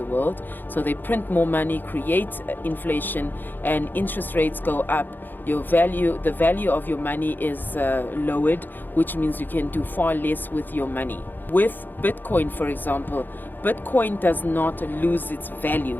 world. So they print more money, create inflation, and interest rates go up. The value of your money is lowered, which means you can do far less with your money. With Bitcoin, for example, Bitcoin does not lose its value.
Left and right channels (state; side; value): late; right; 0.090 ms